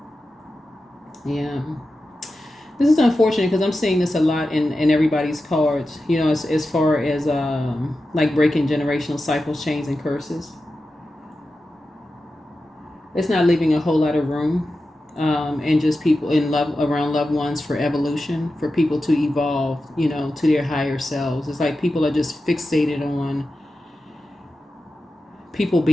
Yeah. This is unfortunate because I'm seeing this a lot in everybody's cards, as far as like breaking generational cycles, chains, and curses. It's not leaving a whole lot of room and just people in love around loved ones for evolution, for people to evolve, to their higher selves. It's like people are just fixated on people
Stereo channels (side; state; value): both; normal; correlation 0.92